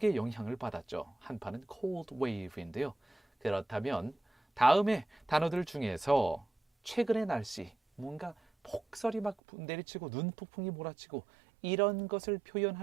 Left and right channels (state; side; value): drops out; left; at 9.3 s